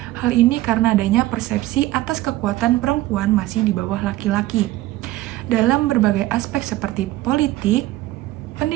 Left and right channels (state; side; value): quieter; left; 16.4 dB